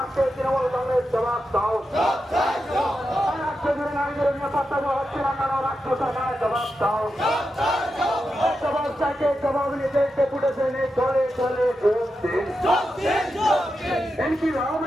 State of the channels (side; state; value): both; normal; correlation 0.88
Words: তৃণমূল কংগ্রেস জবাব দাও। রাজ্যজুড়ে নারীদের নিরাপত্তা দেওয়া হচ্ছে না কেন রাজ্য সরকারের জবাব দাও। জবাব চাইতে জবাব নিতে ডেপুটেশনে চলে চলে যোগ দিন।